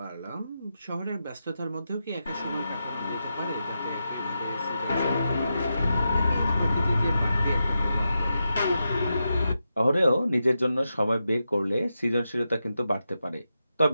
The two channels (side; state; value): both; inverted; correlation -0.88